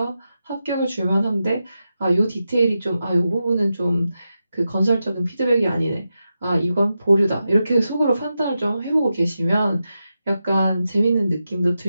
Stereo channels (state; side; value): inverted; both; correlation -0.89